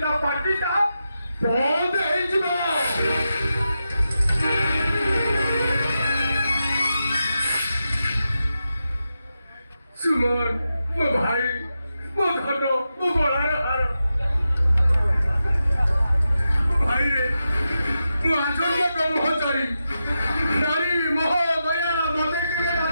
ता पार्टीटा बंद हे जिवो सुमन मो भाई मो धन मो गलार हार भाई रे मो आजन्म ब्रह्मचारी नारी मोह दया मते के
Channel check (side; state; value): both; inverted; correlation -0.89